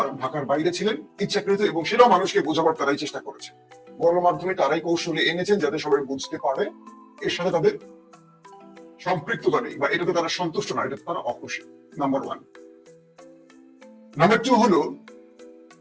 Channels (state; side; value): identical; both; correlation 1.00